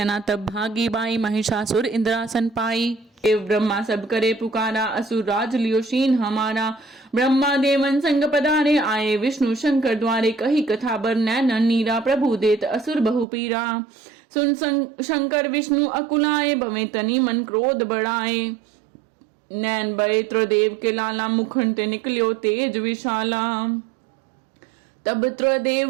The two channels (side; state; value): left; drops out; at 13.2 s